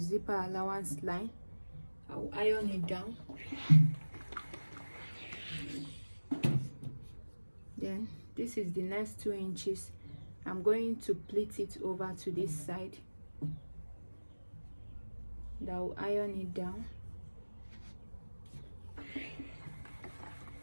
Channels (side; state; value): both; inverted; correlation -1.00